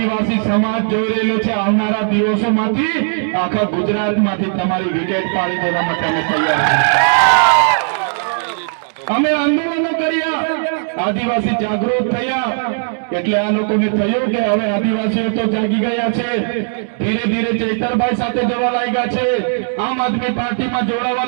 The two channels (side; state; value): left; silent; 68 dB below the other